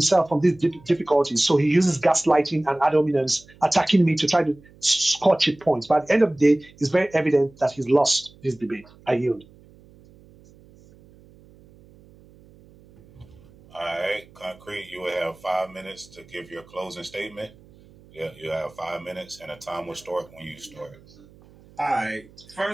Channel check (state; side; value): noise; right; hum, 25 dB below the sound